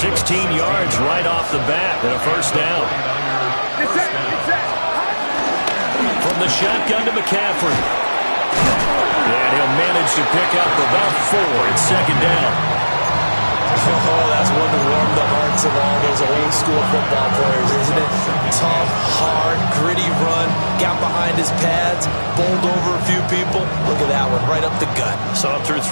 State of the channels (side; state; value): both; inverted; correlation -1.00